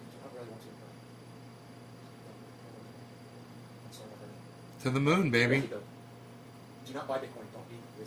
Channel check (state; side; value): identical; both; correlation 1.00